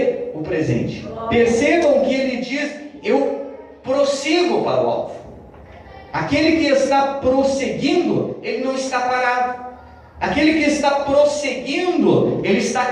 o presente. Percebam que ele diz: eu prossigo para o alvo. Aquele que está prosseguindo, ele não está parado. Aquele que está prosseguindo, ele está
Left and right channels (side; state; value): both; identical; correlation 1.00